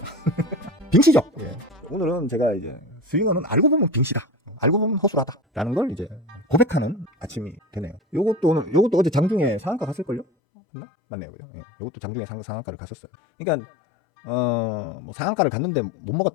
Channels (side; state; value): right; drops out; at 10.2 s